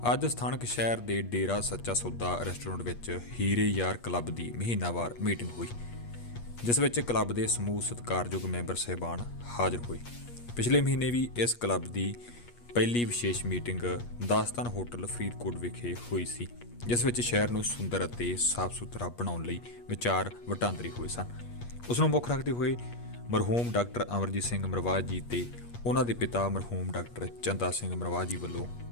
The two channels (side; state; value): right; late; 8.4 ms